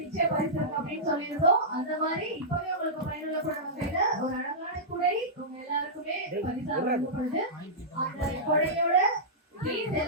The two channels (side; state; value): both; normal; correlation -0.14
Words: நிச்சய பரிசு இருக்கு அப்படின்னு சொல்லியிருந்தோம். அந்த மாதிரி இப்பவே உங்களுக்கு பயனுள்ளப்படும் வகையில ஒரு அழகான குடை உங்க எல்லாருக்குமே பரிசா வழங்கப்படுது. அந்த குடையோட ப்ளீஸ்